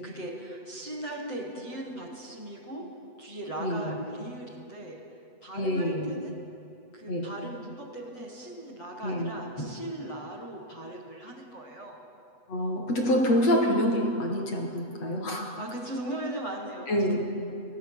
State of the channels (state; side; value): late; right; 8.1 ms